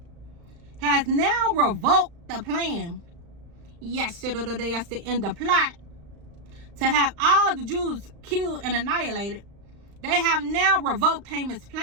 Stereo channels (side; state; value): left; late; 35 ms